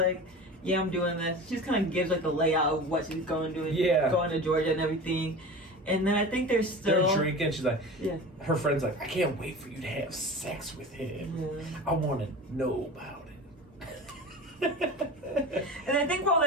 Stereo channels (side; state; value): both; normal; correlation 0.33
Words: "Yeah, I'm doing this." She just kind of gives like the layout of what she's going to do. Yeah. Going to Georgia and everything. And then I think they're drinking. She's like, yeah. Her friend's like, "I can't wait for you to have sex with him. Yeah. I want to know about it." And I think while